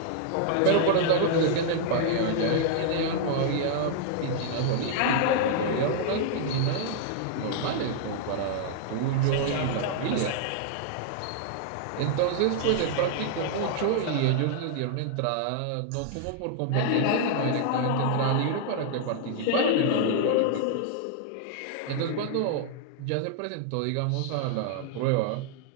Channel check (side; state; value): both; different; correlation -0.01